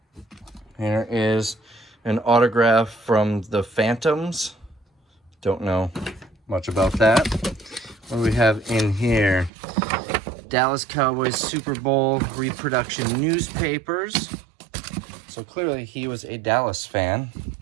Here is an autograph from the Phantoms. Don't know much about that. What do we have in here? Dallas Cowboys Super Bowl reproduction newspapers. So clearly he was a Dallas fan.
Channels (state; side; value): drops out; left; at 9.5 s